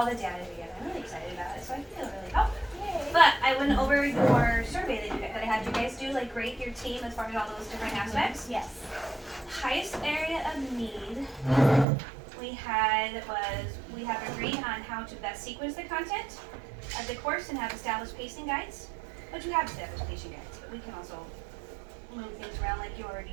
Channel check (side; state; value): left; drops out; at 11.9 s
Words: the data together. I'm really excited about it, so I feel really helpful. But I went over your survey that I had you guys do, like rate your team as far as all those different aspects. Yes. Highest area of need we have agreed on how to best sequence the content of the course and have established pacing guides. But you have established pacing guides, but we can also move things around like you're